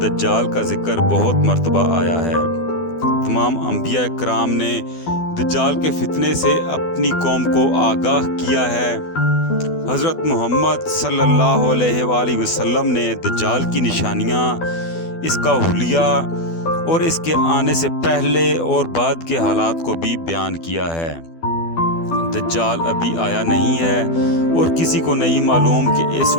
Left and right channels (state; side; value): late; right; 12 ms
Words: دجال کا ذکر بہت مرتبہ آیا ہے۔ تمام انبیاء کرام نے دجال کے فتنے سے اپنی قوم کو آگاہ کیا ہے۔ حضرت محمد صلی اللہ علیہ وآلہ وسلم نے دجال کی نشانیاں، اس کا حلیہ اور اس کے آنے سے پہلے اور بعد کے حالات کو بھی بیان کیا ہے۔ دجال ابھی آیا نہیں ہے اور کسی کو نہیں معلوم کہ اس